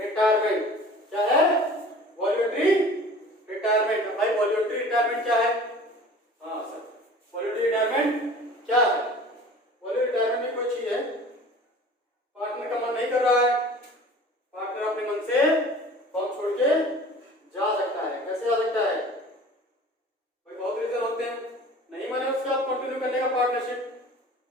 क्या है, वॉलंटरी रिटायरमेंट। भाई वॉलंटरी रिटायरमेंट क्या है, हाँ सर, वॉलंटरी रिटायरमेंट क्या है, वॉलंटरी रिटायरमेंट भी कोई चीज है, पार्टनर का मन नहीं कर रहा है, पार्टनर अपने मन से फर्म छोड़ के जा सकता है। कैसे जा सकता है, भाई बहुत रीजन होते हैं, नहीं माने उसके आप कंटिन्यू करने का, पार्टनरशिप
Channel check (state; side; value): normal; both; correlation 0.44